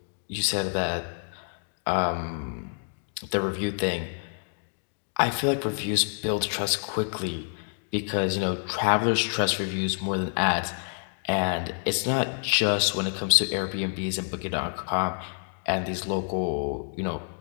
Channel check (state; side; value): silent; right; 60 dB below the other